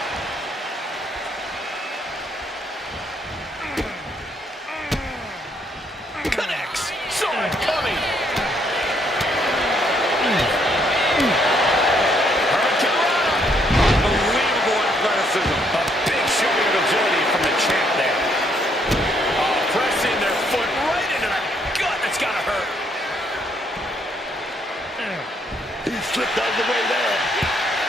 Connects. Saw it coming. slipped out of the way there.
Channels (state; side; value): normal; both; correlation 0.71